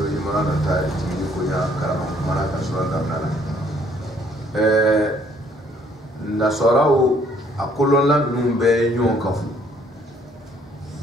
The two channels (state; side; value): normal; both; correlation 0.63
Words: imran ta tini kunya karama mara ka surata nana nasarau akolonla numbe nyon kafu